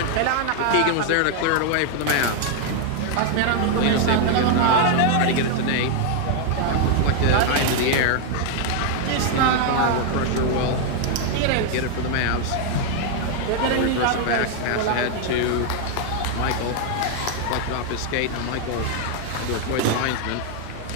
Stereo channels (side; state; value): both; different; correlation 0.00